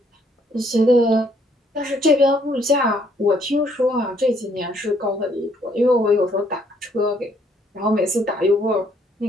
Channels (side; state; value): both; normal; correlation 0.67